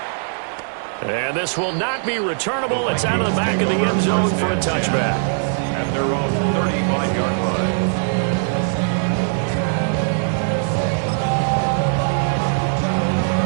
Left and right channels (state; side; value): silent; left; digital silence